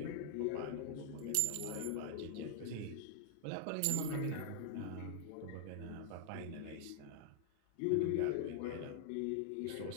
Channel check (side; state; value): both; different; correlation 0.00